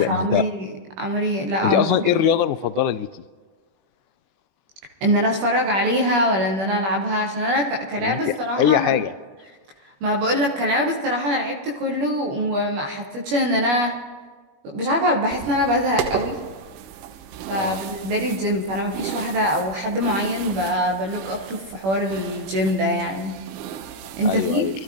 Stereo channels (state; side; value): late; left; 21 ms